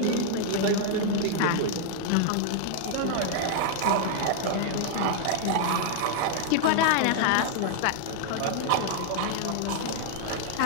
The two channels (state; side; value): different; both; correlation -0.01